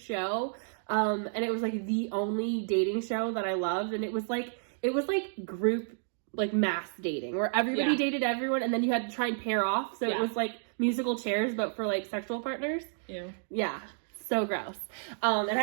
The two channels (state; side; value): silent; left; digital silence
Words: And it was, like, the only dating show that I loved. And it was, like, group, like, mass dating. Where everybody dated everyone, and then you had to try and pair off. So it was, like, musical chairs, but for, like, sexual partners. Ew. Yeah. So gross. And